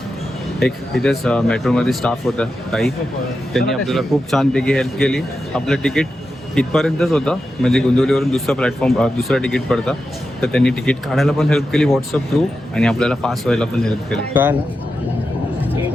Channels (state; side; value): normal; both; correlation 0.89